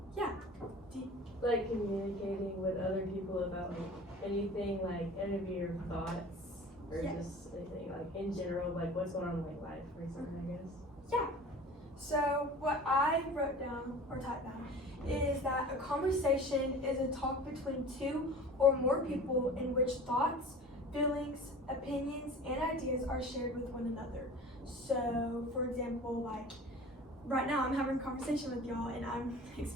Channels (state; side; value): normal; both; correlation 0.40